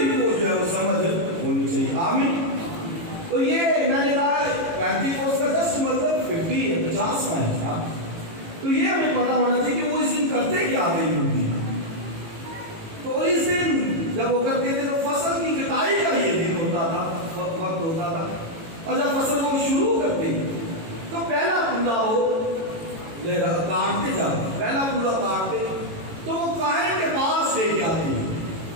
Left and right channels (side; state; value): left; late; 18 ms